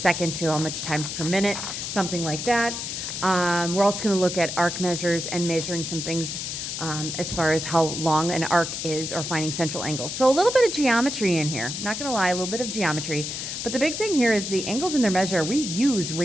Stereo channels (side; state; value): left; noise; hiss, 5 dB below the sound